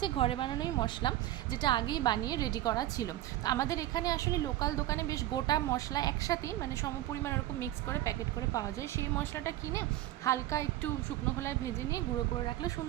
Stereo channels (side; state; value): left; quieter; 14.6 dB